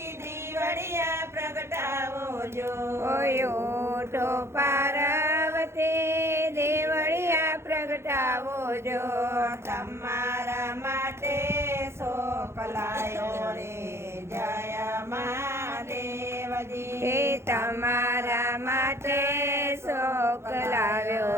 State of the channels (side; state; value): left; late; 0.13 ms